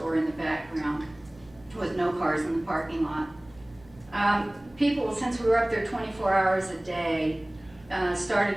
in the background with no cars in the parking lot. People, since we were up there 24 hours a day, started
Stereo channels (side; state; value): right; noise; hum, 25 dB below the sound